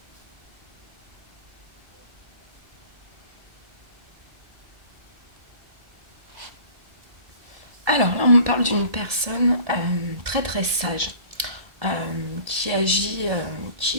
Alors là, on me parle d'une personne très très sage, qui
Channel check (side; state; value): left; late; 1.7 ms